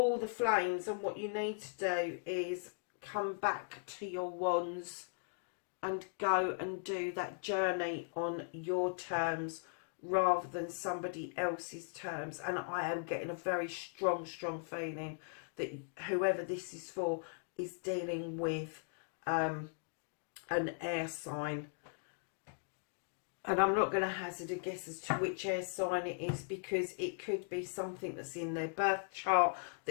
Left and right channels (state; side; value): silent; right; digital silence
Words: the flames, and what you need to do is come back to your wands and go and do that journey on your terms rather than somebody else's terms. And I am getting a very strong feeling that whoever this is for is dealing with an air sign. And I'm not going to hazard a guess as to which air sign it is, because it could be something that's in their birth chart